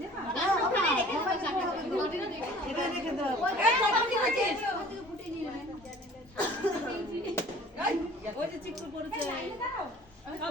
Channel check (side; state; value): both; normal; correlation 0.49